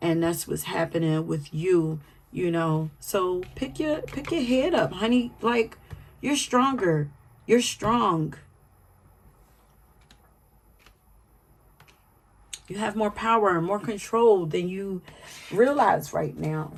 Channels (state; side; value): identical; both; correlation 1.00